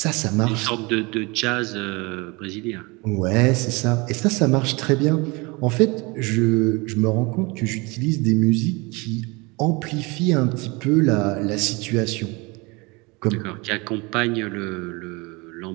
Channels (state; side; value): quieter; left; 26.3 dB